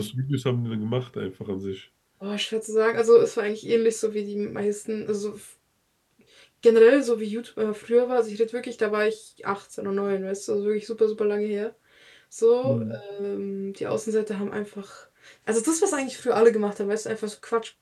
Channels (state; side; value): identical; both; correlation 1.00